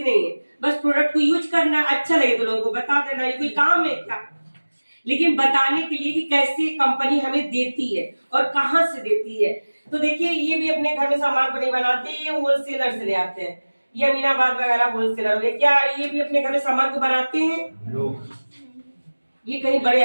नहीं है। बस प्रोडक्ट को यूज करना, अच्छा लगे तो लोगों को बता देना, ये कोई काम है क्या? लेकिन बताने के लिए कि कैसे कंपनी हमें देती है और कहां से देती है। तो देखिए, ये भी अपने घर में सामान को नहीं बनाते, ये होलसेलर से ले आते हैं। ये अमीनाबाद वगैरह होलसेलर हो गए। क्या ये भी अपने घर में सामान को बनाते हैं? ये कहीं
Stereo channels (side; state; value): both; inverted; correlation -1.00